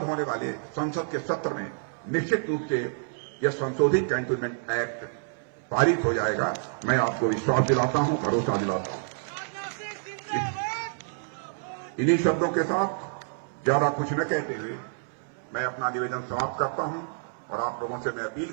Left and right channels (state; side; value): silent; left; 59 dB below the other